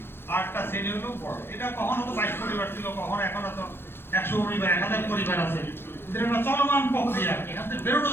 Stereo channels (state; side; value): late; right; 0.11 ms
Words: আর একটা শ্রেণী হলো বড়। এটা কখনো তো 22 পরিবার ছিল, কখনো এখনো তো 100 পরিবার, 1000 পরিবার আছে। এদের একটা চলমান প্রক্রিয়া, এখান থেকে বেরোনো